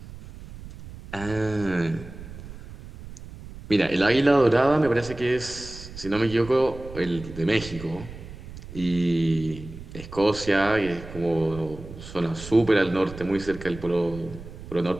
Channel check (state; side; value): noise; right; rumble, 14 dB below the sound